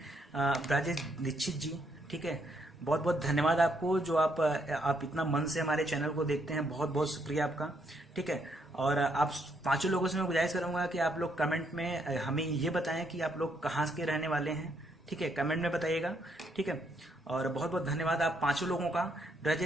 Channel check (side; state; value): both; normal; correlation 0.74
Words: राजेश दीक्षित जी, ठीक है, बहुत बहुत धन्यवाद आपको, जो आप इतना मन से हमारे चैनल को देखते हैं, बहुत बहुत शुक्रिया आपका, ठीक है। और आप 5 लोगों से मैं गुजारिश करूंगा कि आप लोग कमेंट में हमें ये बताएं कि आप लोग कहाँ के रहने वाले हैं, ठीक है, कमेंट में बताइएगा, ठीक है। और बहुत बहुत धन्यवाद आप 5 लोगों का।